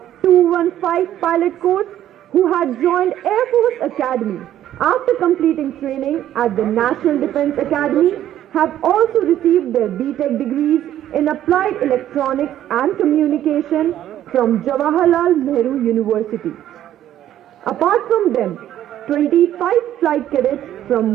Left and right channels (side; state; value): left; quieter; 11.9 dB